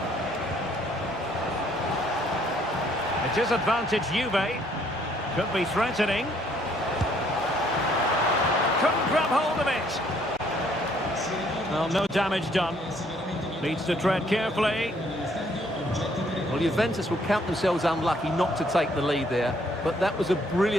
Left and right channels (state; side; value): normal; both; correlation 0.65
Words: It is advantage Juve. Could be threatening. Couldn't grab hold of it. Well, no damage done. Needs to tread carefully. Well, Juventus will count themselves unlucky not to take the lead there, but that was a